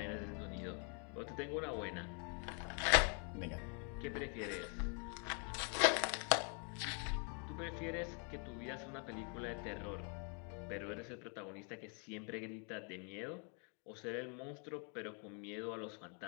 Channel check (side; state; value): right; quieter; 39.8 dB